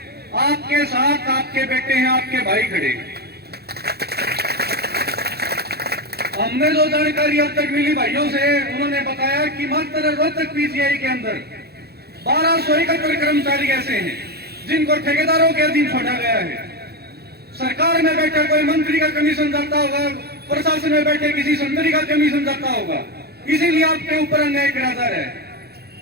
आपके साथ आपके बेटे हैं, आपके भाई खड़े हैं। हमने जो जानकारी अब तक मिली भाइयों से, उन्होंने बताया कि मात्र रोहतक पीजीआई के अंदर 1271 कर्मचारी ऐसे हैं जिनको ठेकेदारों के अधीन छोड़ा गया है। सरकार में बैठा कोई मंत्री का कमीशन जाता होगा, प्रशासन में बैठे किसी संतरी का कमीशन जाता होगा, इसीलिए आपके ऊपर अन्याय किया जा रहा है।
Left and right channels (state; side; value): late; left; 0.46 ms